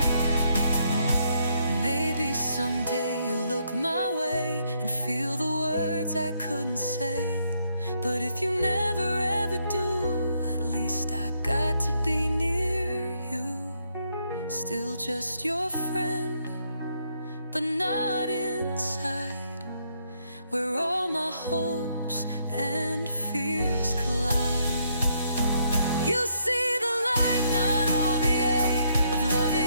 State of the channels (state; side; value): inverted; both; correlation -0.74